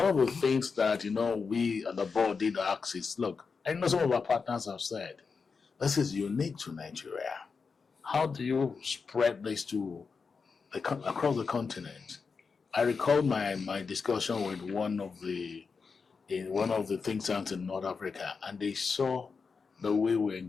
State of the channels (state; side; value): quieter; right; 5.1 dB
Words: of the things that, you know, we at the board did ask is, look, I know some of our partners have said, this is unique to Nigeria. How do you spread this to across the continent? I recall my discussion with one of the think tanks in North Africa, and they saw the way we